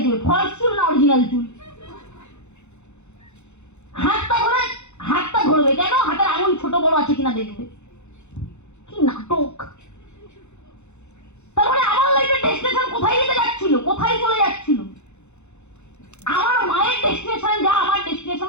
ফলস চুল না অরিজিনাল চুল। হাতটা ধরবে কেন? হাতের আঙুল ছোট বড় আছে কিনা দেখবে। কি নাটক! তারপরে আমার লাইফের ডেস্টিনেশন কোথায় যেতে যাচ্ছিল, কোথায় চলে যাচ্ছিল? আমার মায়ের ডেস্টিনেশন যা, আমার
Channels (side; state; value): right; late; 0.82 ms